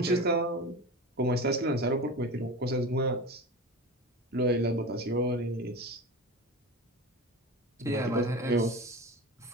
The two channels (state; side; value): normal; both; correlation 0.29